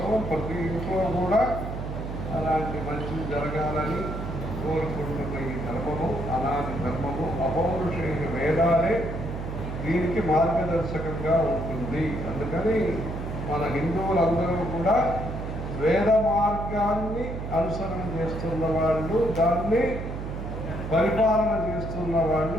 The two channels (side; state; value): right; noise; hum, 6 dB below the sound